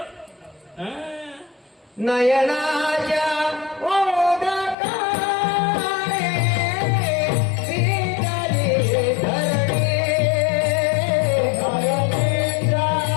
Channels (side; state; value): right; drops out; at 4.8 s